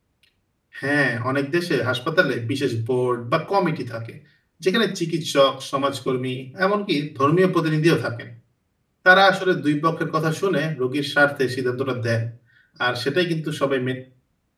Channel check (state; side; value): identical; both; correlation 1.00